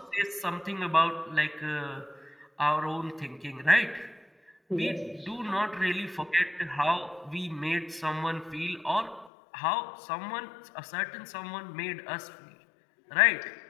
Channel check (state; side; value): drops out; right; at 9.3 s